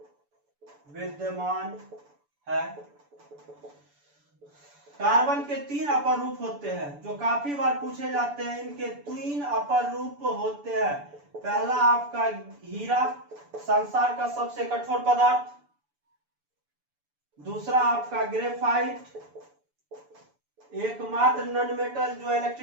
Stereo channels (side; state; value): left; late; 6.9 ms